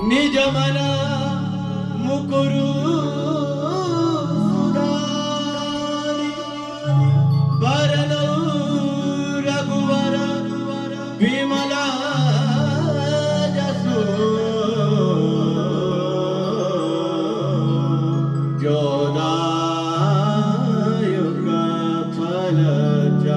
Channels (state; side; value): identical; both; correlation 1.00